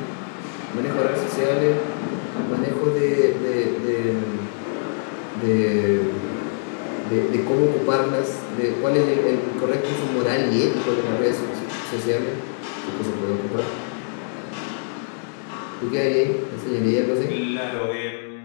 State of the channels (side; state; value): right; silent; digital silence